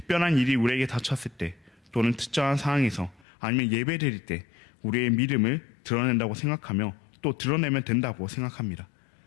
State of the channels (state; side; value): drops out; right; at 3.2 s